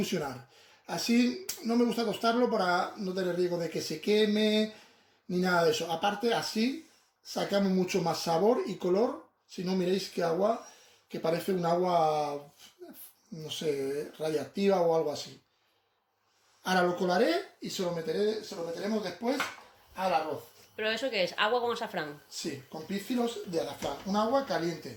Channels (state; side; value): identical; both; correlation 1.00